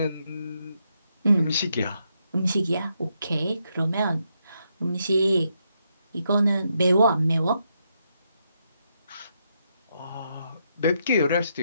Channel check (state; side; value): inverted; both; correlation -0.80